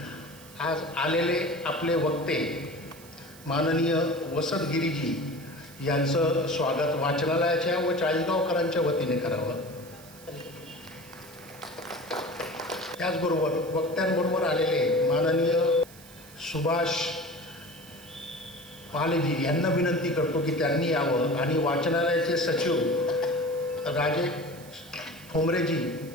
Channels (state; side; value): noise; right; hiss, 21 dB below the sound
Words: आज आलेले आपले वक्ते माननीय वसंत गिरीजी यांचं स्वागत वाचनालयाच्या व चाळीसगावकरांच्या वतीने करावं। त्याचबरोबर वक्त्यांबरोबर आलेले माननीय सुभाष पालेजी यांना विनंती करतो की त्यांनी यावं आणि वाचनालयाचे सचिव राजेश ठोंबरेजी